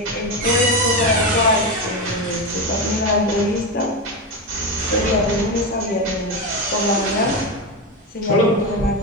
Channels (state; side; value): normal; both; correlation 0.16